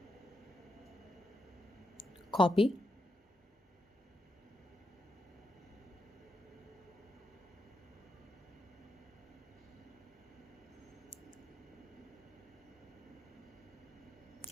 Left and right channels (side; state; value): both; normal; correlation 0.84